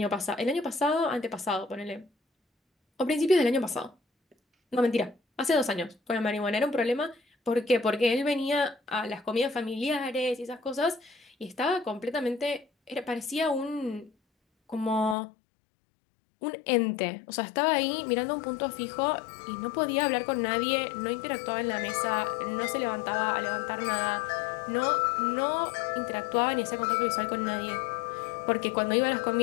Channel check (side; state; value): right; drops out; at 15.2 s